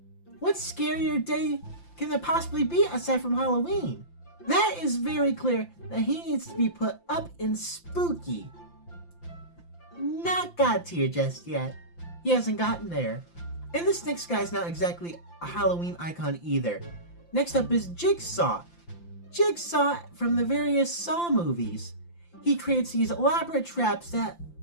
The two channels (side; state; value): right; late; 5.8 ms